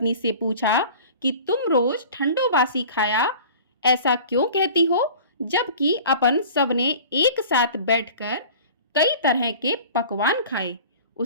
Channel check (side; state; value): both; inverted; correlation -0.42